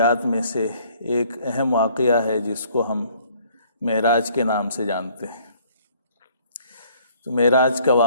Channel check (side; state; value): both; inverted; correlation -0.59